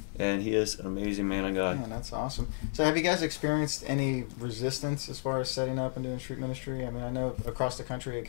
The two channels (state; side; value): silent; right; digital silence